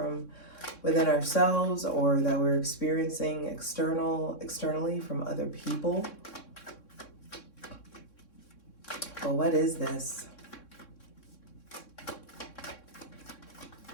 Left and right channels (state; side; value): late; right; 3.6 ms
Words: within ourselves, or that we're experiencing externally from other people. But what is this?